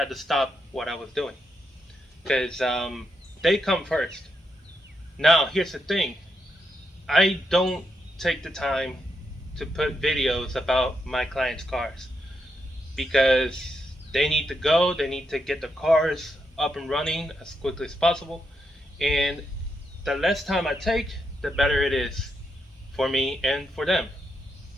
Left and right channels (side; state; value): both; normal; correlation 0.82